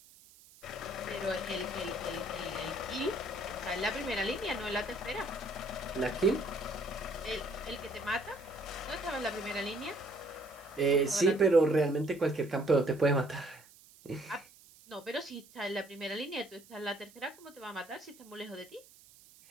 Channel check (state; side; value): noise; right; hiss, 23 dB below the sound